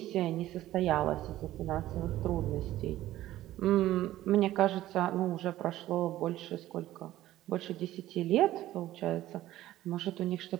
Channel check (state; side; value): quieter; left; 14.7 dB